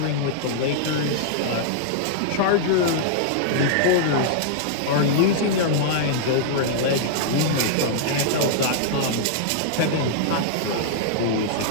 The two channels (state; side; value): different; both; correlation -0.01